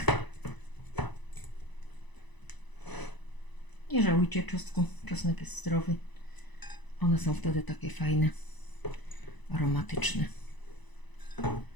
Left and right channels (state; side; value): late; right; 1.0 ms